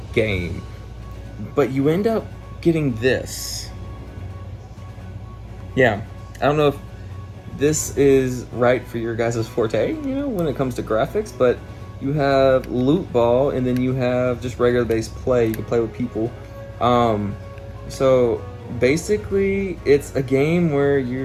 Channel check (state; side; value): identical; both; correlation 1.00